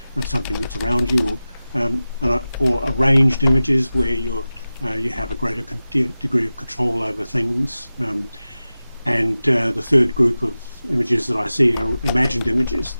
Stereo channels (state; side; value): inverted; both; correlation -0.95